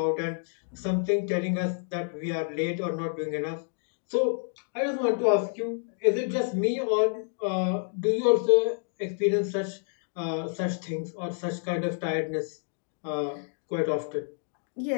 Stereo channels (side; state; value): right; silent; 58 dB below the other